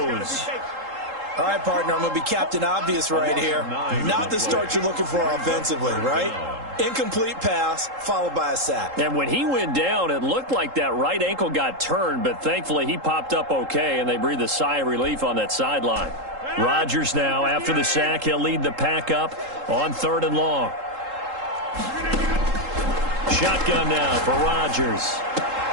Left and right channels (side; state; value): left; late; 3.8 ms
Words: All right, partner, I'm going to be Captain Obvious right here. Not the start you're looking for offensively, right? Incomplete pass, followed by a sack. And when he went down, it looked like that right ankle got turned, but thankfully he popped up okay, and they breathed a sigh of relief on that sideline. Rodgers now, after the sack, he'll lead the pack up on 3rd and long. Shotgun now for Rodgers.